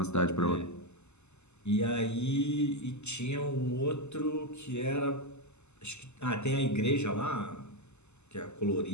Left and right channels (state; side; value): late; right; 0.82 ms